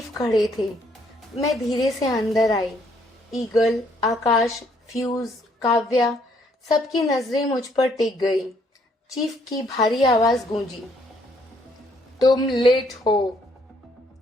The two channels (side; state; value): both; normal; correlation 0.68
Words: खड़े थे। मैं धीरे से अंदर आई। ईगल, आकाश, फ्यूज, काव्या, सबकी नजरें मुझ पर टिक गई। चीफ की भारी आवाज गूंजी, तुम लेट हो।